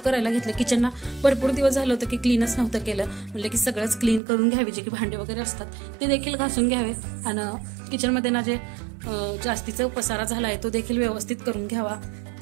करायला घेतलं. किचनना भरपूर दिवस झालं होतं की क्लीनच नव्हतं केलं. म्हटलं की सगळंच क्लीन करून घ्यावे, जे की भांडे वगैरे असतात ते देखील घासून घ्यावे आणि किचनमध्ये ना जे जास्तीचा पसारा झाला आहे तो देखील व्यवस्थित करून घ्यावा.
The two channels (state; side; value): drops out; left; at 4.2 s